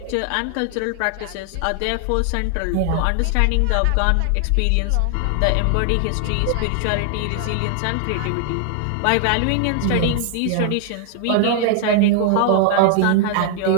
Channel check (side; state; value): both; different; correlation 0.00